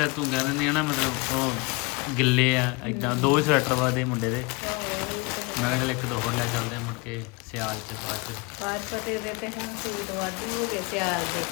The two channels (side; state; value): right; quieter; 27.8 dB